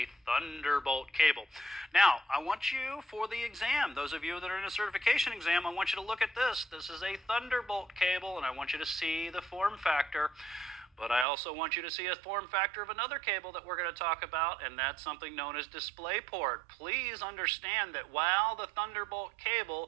Thunderbolt cable. Now, I want you, for the exam, those of you that are in a certification exam, I want you to look at this. This is a Thunderbolt cable, and I want you to see the form factor. But I also want you to see a form factor of another cable that we're going to talk about, and that's something known as DisplayPort. Please understand that while the Thunderbolt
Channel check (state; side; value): drops out; left; at 11.2 s